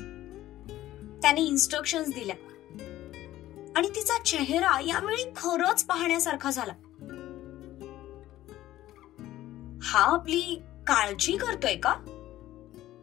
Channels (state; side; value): quieter; right; 14.6 dB